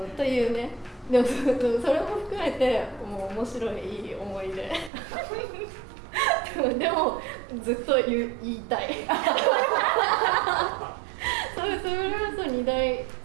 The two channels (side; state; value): left; drops out; at 4.9 s